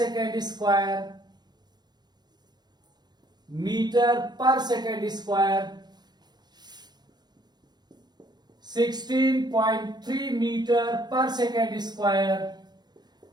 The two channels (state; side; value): late; left; 0.20 ms